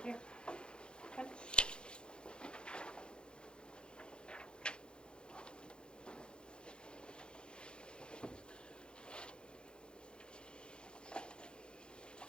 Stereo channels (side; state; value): right; late; 0.051 ms